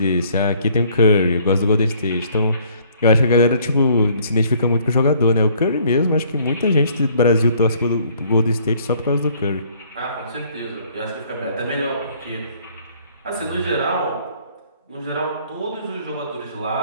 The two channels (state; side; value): inverted; both; correlation -0.61